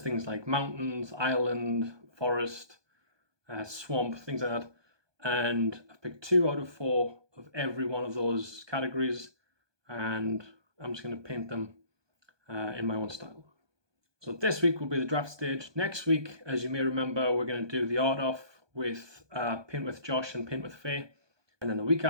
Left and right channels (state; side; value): late; left; 1.2 ms